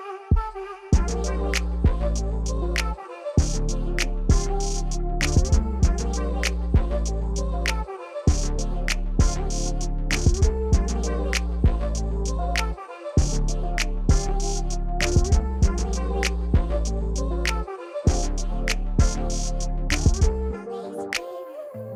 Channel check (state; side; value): identical; both; correlation 1.00